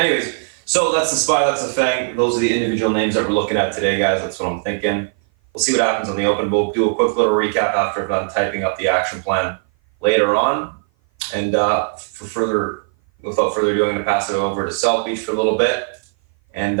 so that's the SPY, that's the Fang. Those are the individual names that we're looking at today, guys. That's what I'm thinking. We'll see what happens on the open. We'll do a quick little recap after I'm done typing up the action plan later on. And without further ado, I'm going to pass it over to South Beach for a little bit.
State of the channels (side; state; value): left; silent; 56 dB below the other